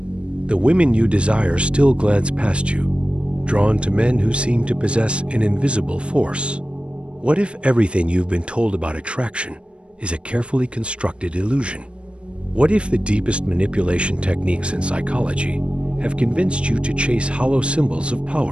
The women you desire still glance past you, drawn to men who seem to possess an invisible force. What if everything you've been told about attraction is a carefully constructed illusion? What if the deepest manipulation techniques in psychology have convinced you to chase hollow symbols of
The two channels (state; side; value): late; left; 0.058 ms